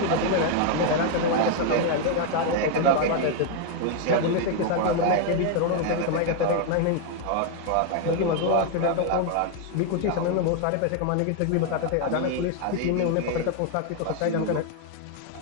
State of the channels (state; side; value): different; both; correlation 0.00